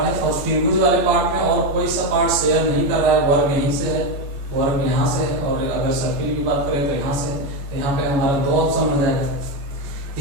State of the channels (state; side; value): late; left; 14 ms